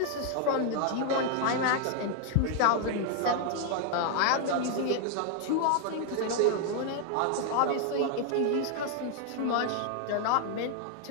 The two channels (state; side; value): different; both; correlation 0.00